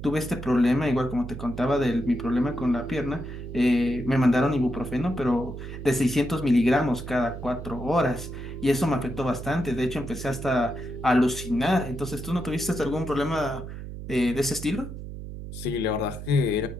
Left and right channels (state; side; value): noise; right; hum, 10 dB below the sound